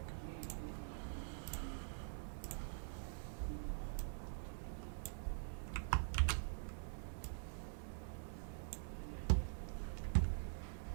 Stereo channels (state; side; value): silent; left; digital silence